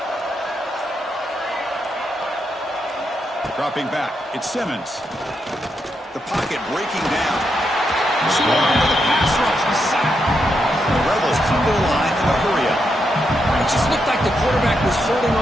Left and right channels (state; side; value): normal; both; correlation 0.82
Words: Dropping back, it's Simmons. The pocket breaking down. Swarm with a pass rush. The Rebels come to the line in a hurry up. It just looked like the quarterback was holding